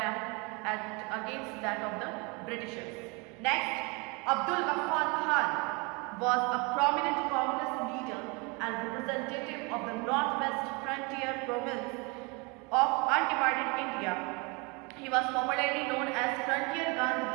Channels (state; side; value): quieter; left; 29.3 dB